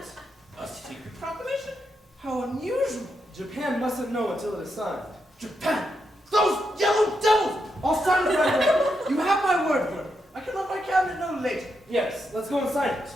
A secret proclamation? How unusual. Japan mustn't know until it is signed. Japan! Those yellow devils! I'll sign it right away. You have my word for it. I can let my cabinet know later. Yes, let's go and sign it.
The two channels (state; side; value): normal; both; correlation 0.83